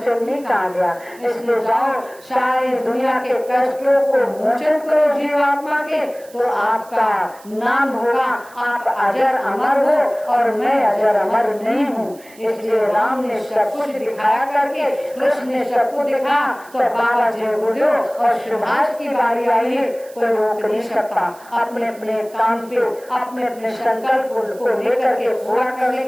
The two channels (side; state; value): right; noise; hiss, 24 dB below the sound